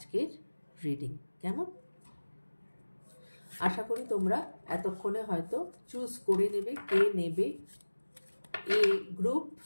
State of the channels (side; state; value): both; inverted; correlation -1.00